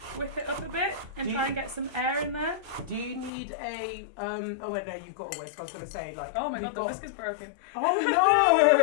whip it up a bit and try and get some air in there. Do you need a oh wait, no, you've got a whisk. I was gonna say, like, oh my god, the whisk is broken. Oh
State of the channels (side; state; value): right; drops out; at 3.3 s